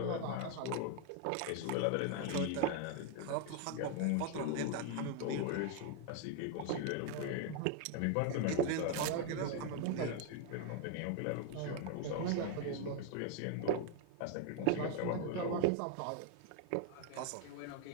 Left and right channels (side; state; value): both; different; correlation 0.00